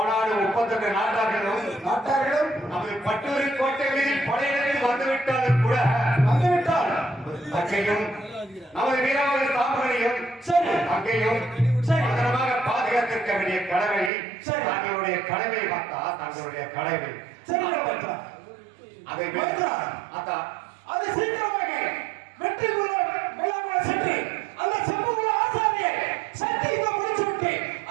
32 நாட்டார்களும் நமது பட்டூர் கோட்டை மீதில் படையெடுத்து வந்துவிட்டாலும் கூட தங்கையும் நமது வீரவாத தாமரையும் தங்கையும் பத்திரமாக பாதுகாத்திருக்க வேண்டிய கடமை தங்களுடைய கடமை பார்த்தா தங்களுடைய கடமை. அதை அத்தா அது சீக்கிரமாக வெற்றி மேலாக சென்று அந்த செம்புகுல ஆசாரியை சத்தியத்தை முடிச்சுவிட்டு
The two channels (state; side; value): drops out; left; at 14.1 s